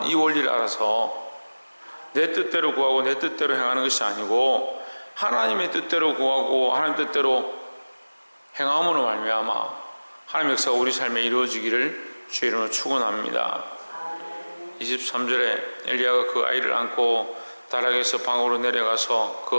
이 원리를 알아서 내 뜻대로 구하고 내 뜻대로 행하는 것이 아니고 하나님의 뜻대로 구하고 하나님 뜻대로 행함으로 말미암아 하나님 역사가 우리 삶에 이루어지기를 주의 이름으로 축원합니다. 23절에 엘리야가 그 아이를 안고 다락에서 방으로 내려가서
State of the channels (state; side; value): inverted; both; correlation -1.00